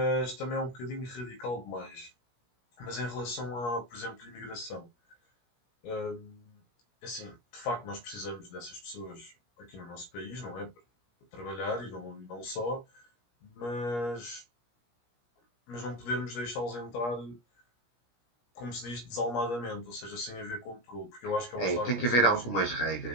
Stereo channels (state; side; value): late; right; 17 ms